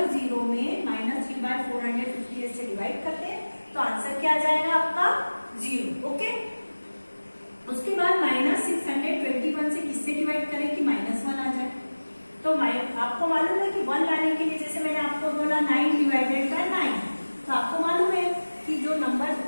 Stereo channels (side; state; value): both; inverted; correlation -1.00